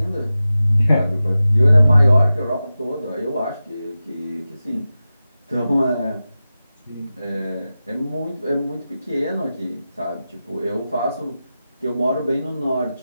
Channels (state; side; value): inverted; both; correlation -0.94